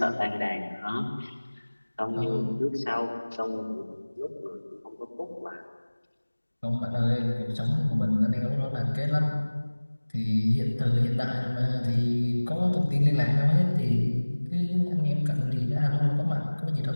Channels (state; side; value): inverted; both; correlation -1.00